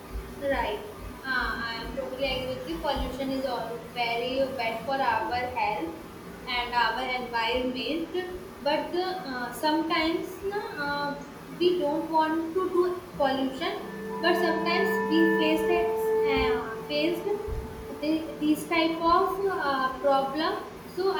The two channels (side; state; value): both; identical; correlation 1.00